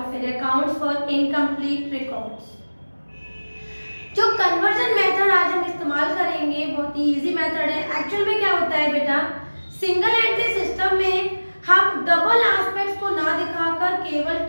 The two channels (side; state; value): both; inverted; correlation -1.00